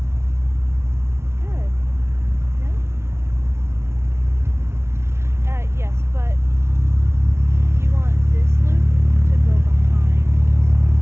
Good. Yeah? Yes, but you want this loop to go behind.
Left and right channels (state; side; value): late; left; 0.13 ms